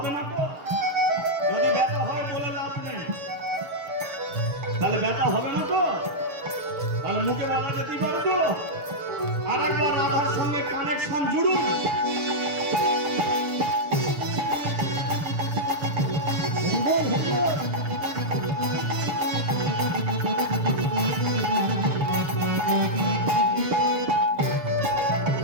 না তো যদি ব্যথা হয় বলে লাভ নেই তাহলে ব্যথা হবে না তো তাহলে মুখে বলা যেতেই পারে তো আরেকবার রাধার সঙ্গে কানেকশন জুড়ুন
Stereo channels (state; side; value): late; left; 6.7 ms